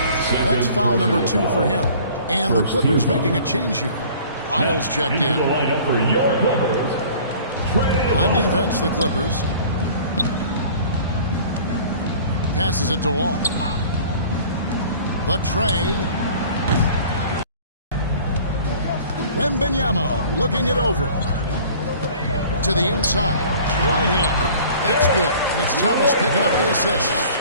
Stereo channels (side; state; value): both; inverted; correlation -0.48